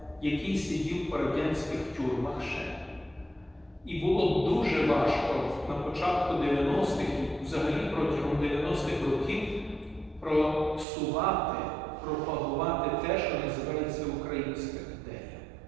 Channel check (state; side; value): drops out; left; at 10.9 s